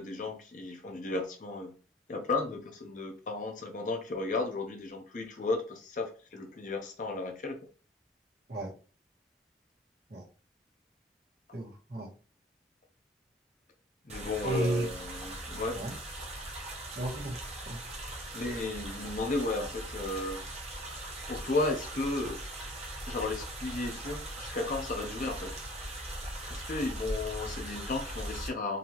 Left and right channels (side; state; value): both; normal; correlation 0.48